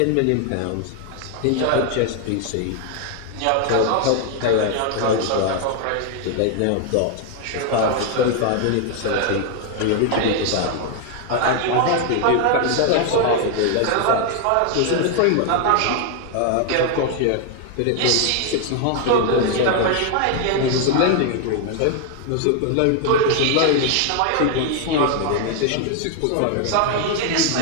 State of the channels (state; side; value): different; both; correlation 0.00